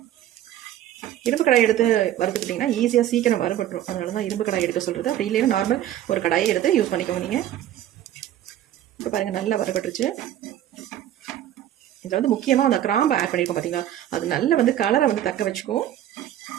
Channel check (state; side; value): quieter; left; 12.2 dB